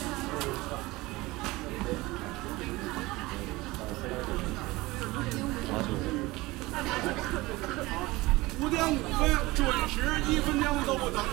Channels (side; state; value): left; quieter; 20.7 dB